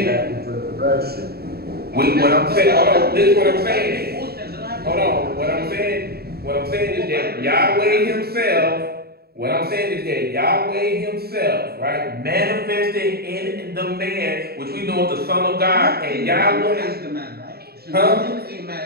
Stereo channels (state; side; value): late; left; 0.46 ms